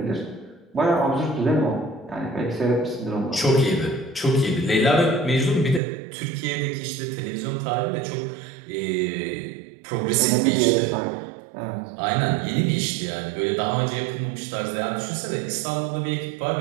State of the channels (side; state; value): left; drops out; at 5.8 s